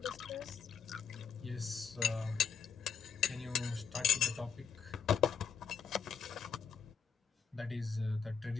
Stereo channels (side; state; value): right; quieter; 6.7 dB